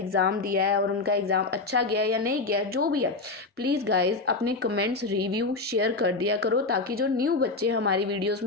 दिया है और उनका एग्ज़ाम अच्छा गया या नहीं गया, जो भी है, प्लीज़ गाइज अपने कमेंट्स रिव्यू शेयर कर दिया करो, ताकि जो न्यू बच्चे हमारी वीडियोज़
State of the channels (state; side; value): quieter; right; 3.6 dB